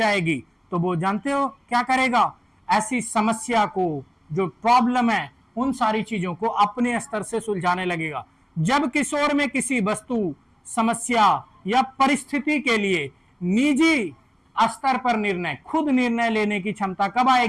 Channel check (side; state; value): both; identical; correlation 1.00